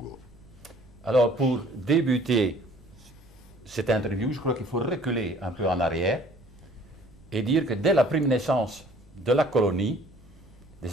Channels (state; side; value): noise; right; rumble, 25 dB below the sound